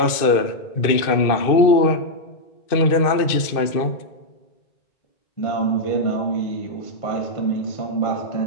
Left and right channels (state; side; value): late; right; 2.5 ms